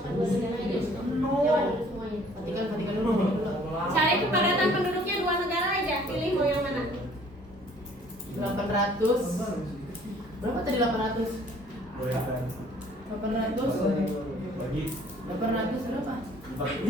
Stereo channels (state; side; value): normal; both; correlation 0.56